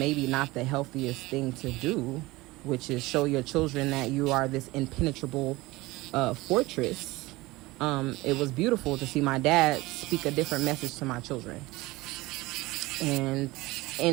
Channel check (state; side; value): quieter; left; 20.5 dB